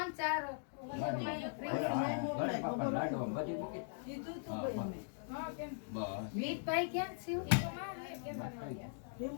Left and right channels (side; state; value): right; silent; digital silence